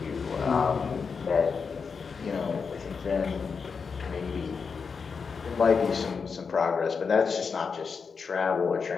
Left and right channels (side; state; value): right; quieter; 5.5 dB